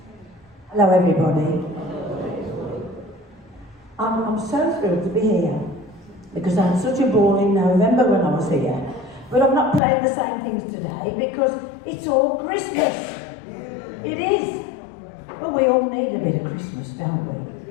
Hello everybody. I'm so thrilled to be here because I had such a ball in November when I was here. But I'm not playing the same things today because it's all Christmas. It is. Well, we all need a bit of Christmas, don't we?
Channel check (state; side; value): drops out; right; at 9.8 s